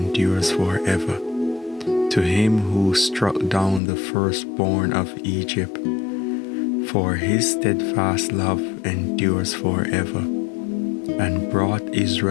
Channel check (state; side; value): drops out; right; at 3.8 s